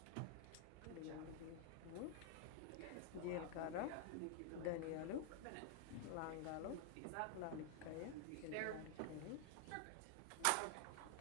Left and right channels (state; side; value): different; both; correlation 0.00